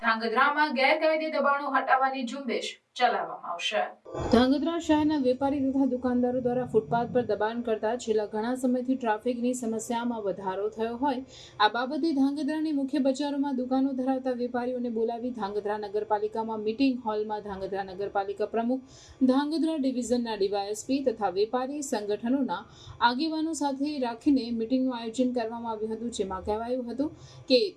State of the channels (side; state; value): both; identical; correlation 1.00